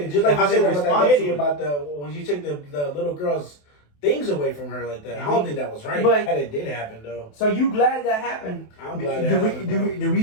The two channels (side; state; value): right; late; 27 ms